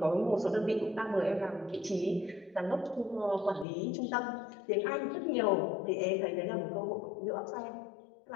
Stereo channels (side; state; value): right; drops out; at 3.7 s